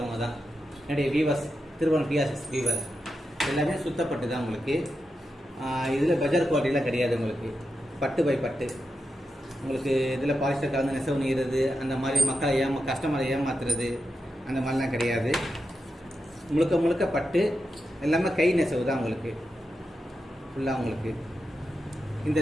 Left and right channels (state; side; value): normal; both; correlation 0.88